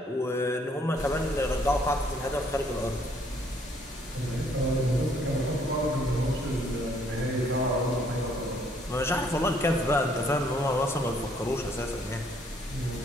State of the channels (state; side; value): normal; both; correlation 0.65